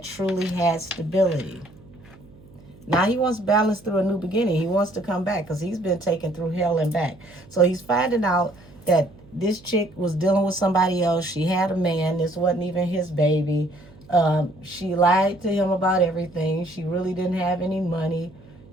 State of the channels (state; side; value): noise; right; hum, 23 dB below the sound